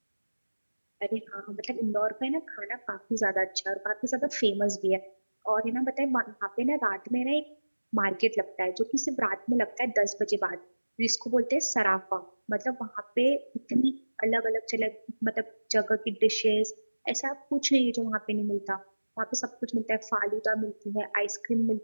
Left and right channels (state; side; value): inverted; both; correlation -1.00